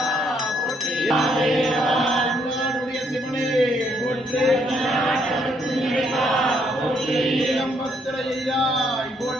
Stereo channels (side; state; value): both; normal; correlation 0.71